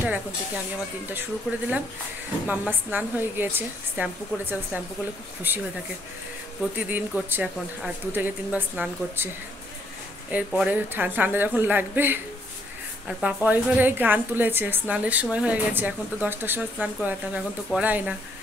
এখন থেকে আমি আমার দিনটা শুরু করে দিলাম। মাম্মা স্নান হয়ে গিয়েছে, শ্যাম্পু করেছে। শ্যাম্পু করলে খুব খুশি হয়ে থাকে, প্রতিদিন করছে এখন, আর 2 থেকে 3 বার স্নান করছে। এরপরে ঠান্ডা যখন লাগবে। আর পাপা ওই ঘরে গান তুলেছে, স্নানের সময় হয়ে গেছে। এখন তো 10টার সময় স্নান করাতাম, এখন তো করাই না,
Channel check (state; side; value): normal; both; correlation 0.69